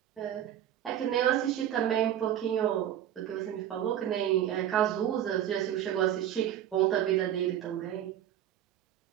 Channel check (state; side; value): quieter; left; 10.9 dB